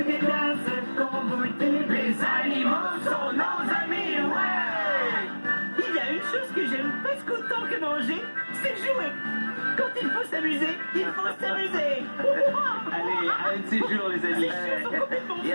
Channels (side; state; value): both; inverted; correlation -1.00